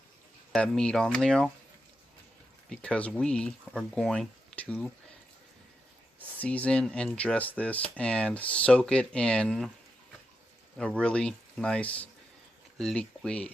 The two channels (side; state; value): both; normal; correlation 0.86